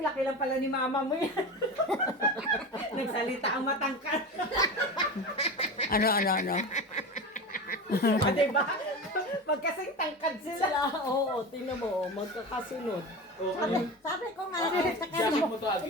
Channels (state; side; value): normal; both; correlation 0.27